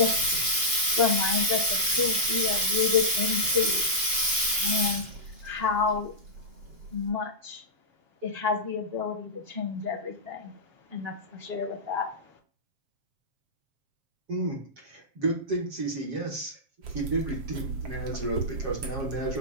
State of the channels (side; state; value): left; late; 7.2 ms